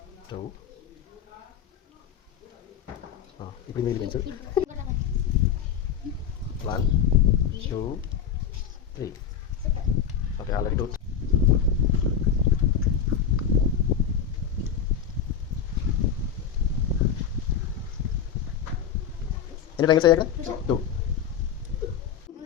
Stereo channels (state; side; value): quieter; right; 7.8 dB